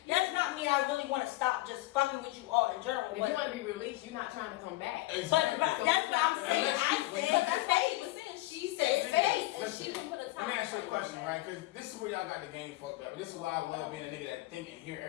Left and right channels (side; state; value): right; quieter; 18.8 dB